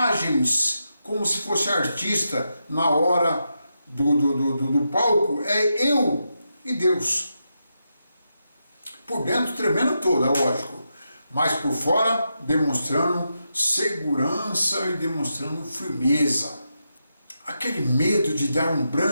como se fosse artista na hora do palco. É eu e Deus. Por dentro tremendo toda, lógico. Mas por fora, demonstrando segurança e demonstrando firmeza. Aquele medo de dar um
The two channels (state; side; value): inverted; both; correlation -0.86